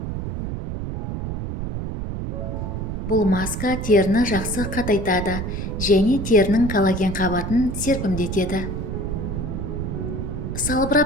Бұл маска теріні жақсы қатайтады және терінің коллаген қабатын серпімдетеді.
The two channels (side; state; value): right; noise; rumble, 4 dB below the sound